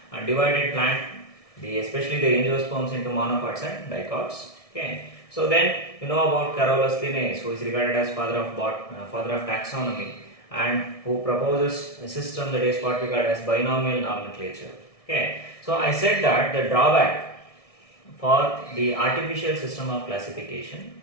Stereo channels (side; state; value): right; late; 1.6 ms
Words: and divided plant, especially the angiosperms, into monocots and dicots. Okay. So then you know about Carolus Linnaeus, who is regarded as father of taxonomy, and who proposes a system that is what we call as binomial nomenclature. Okay. So I said that the drawback for the artificial system of classification.